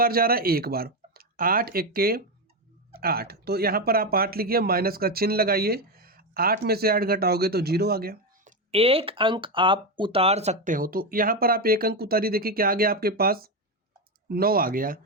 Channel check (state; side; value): normal; both; correlation 0.11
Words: जा रहा है? एक बार। 8 एके 8, तो यहाँ पर आप 8 लिखिए, माइनस का चिन्ह लगाइए। 8 में से 8 घटाओगे तो 0 आ गया। एक अंक आप उतार सकते हो, तो यहाँ पर आप एक अंक उतारिए। देखिए क्या आ गया आपके पास? 9 आ गया।